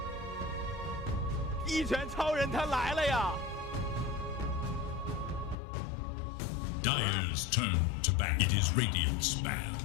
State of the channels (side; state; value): right; drops out; at 5.6 s